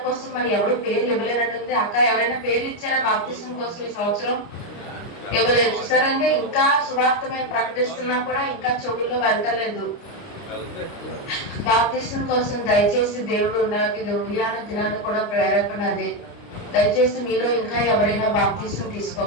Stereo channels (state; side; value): late; right; 29 ms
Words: కోసం మరి ఎవరు పేర్లు ఇవ్వలేనట్టుంది. అక్క ఎవరైనా పేర్లు ఇచ్చారా బాప్తిసం కోసం ఈ సంవత్సరం? ఇవ్వలేదు. చూసారంటే ఇంకా సువార్త మేము ప్రకటిస్తున్నా కూడా ఇంకా చెవుల్లో వెళ్ళలేదు. బాప్తిసం కోసం దయచేసి దేవుడు నాకు ఇది ఉదయాన దినాన్ని కూడా ప్రేరేపణ అదే. దయచేసి మీలో ఇంకా ఎవరైనా బాప్తిసం